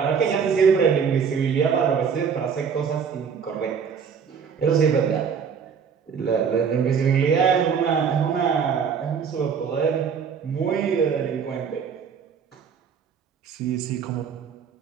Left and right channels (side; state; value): left; quieter; 6.7 dB